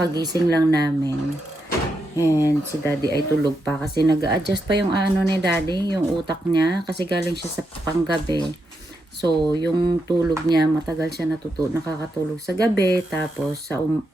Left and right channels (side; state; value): both; normal; correlation 0.83